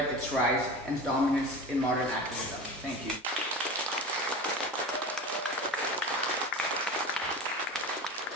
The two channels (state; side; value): normal; both; correlation 0.32